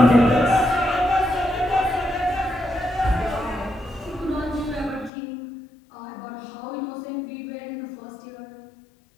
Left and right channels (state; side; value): drops out; right; at 5.1 s